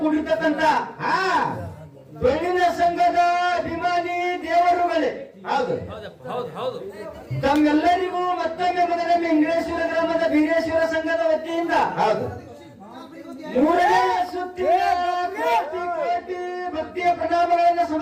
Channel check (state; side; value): identical; both; correlation 1.00